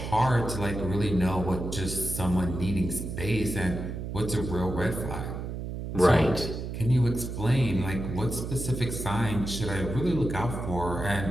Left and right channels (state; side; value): noise; right; hum, 6 dB below the sound